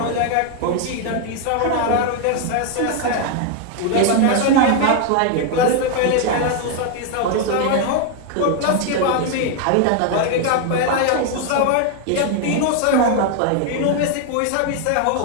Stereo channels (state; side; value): different; both; correlation 0.01